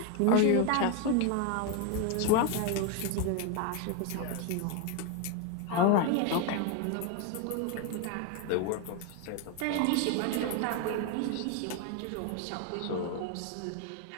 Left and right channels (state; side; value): different; both; correlation 0.01